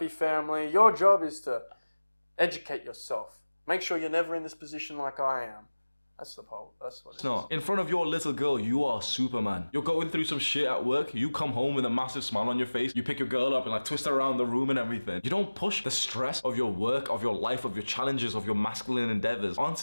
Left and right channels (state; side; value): inverted; both; correlation -1.00